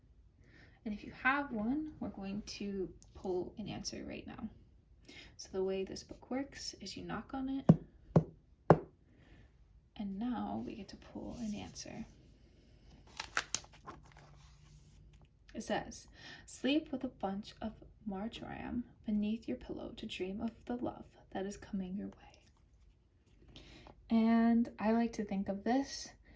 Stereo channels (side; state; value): both; identical; correlation 1.00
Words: And if you have one, we're going to pull an answer right now. So the way this book works is you knock on it, and now we get to pull an answer. It says, sleep with a bunch of marjoram beneath your pillow to dream of the love that is coming your way. And I like to think of this